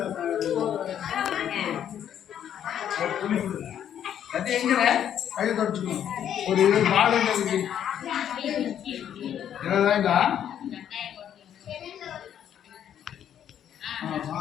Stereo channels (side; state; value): right; quieter; 9.8 dB